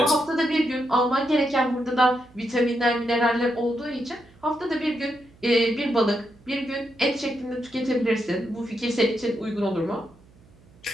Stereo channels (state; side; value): noise; right; hum, 27 dB below the sound